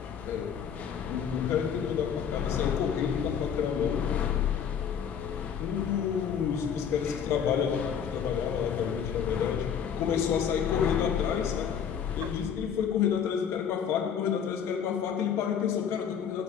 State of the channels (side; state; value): right; quieter; 7.8 dB